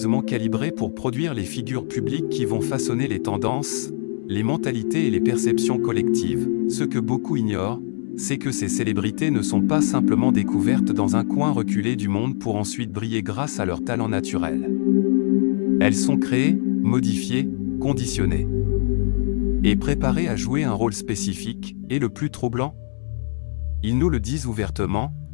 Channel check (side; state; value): right; silent; 64 dB below the other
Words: calibré pour produire les figures publiques qui vont façonner les tendances, les mentalités et les perceptions collectives. Ce que beaucoup ignorent, c'est que ces célébrités ne sont pas simplement découvertes dans un coin reculé du monde pour ensuite briller grâce à leur talent naturel. Elles sont créées, modifiées, conditionnées et préparées à jouer un rôle spécifique, et le plus troublant, ils nous le disent ouvertement,